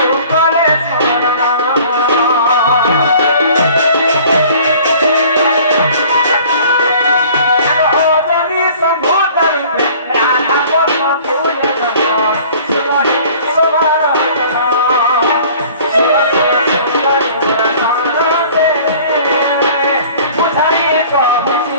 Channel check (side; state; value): both; inverted; correlation -0.49